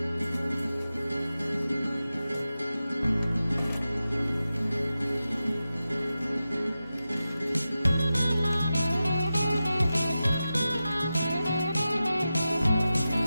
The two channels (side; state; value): both; inverted; correlation -0.93